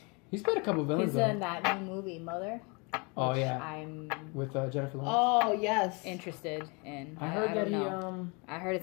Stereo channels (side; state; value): right; quieter; 31.1 dB